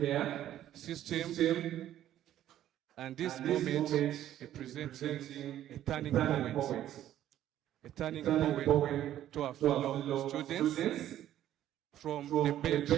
system. And this moment representing a turning point to our fellow students from the bench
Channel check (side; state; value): left; quieter; 12.1 dB